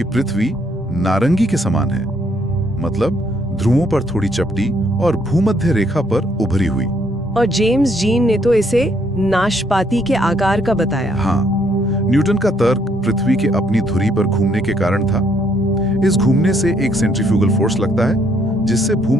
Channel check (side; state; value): both; normal; correlation 0.69